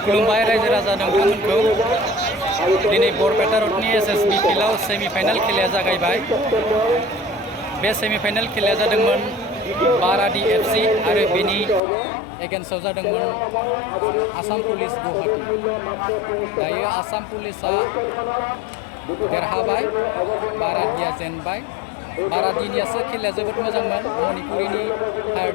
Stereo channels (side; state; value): right; drops out; at 11.8 s